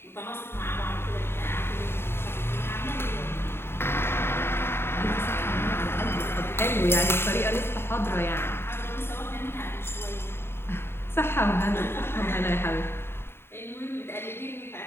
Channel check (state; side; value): late; right; 0.11 ms